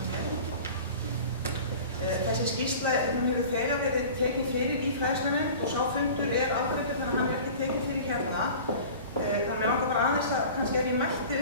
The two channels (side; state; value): both; inverted; correlation -0.40